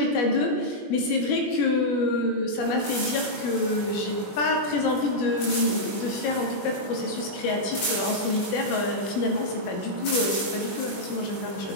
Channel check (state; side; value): late; right; 21 ms